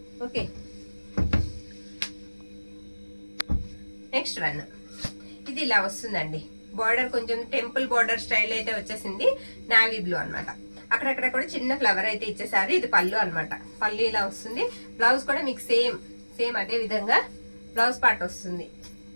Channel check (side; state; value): both; inverted; correlation -1.00